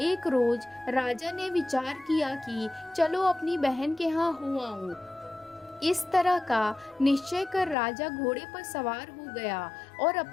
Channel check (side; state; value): right; drops out; at 7.8 s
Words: एक रोज राजा ने विचार किया कि चलो अपनी बहन के यहाँ हो आऊं। इस तरह का निश्चय कर राजा घोड़े पर सवार हो गया और